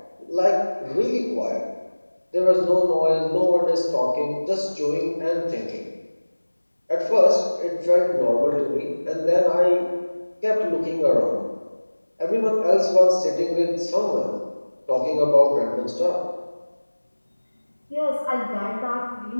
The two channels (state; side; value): inverted; both; correlation -1.00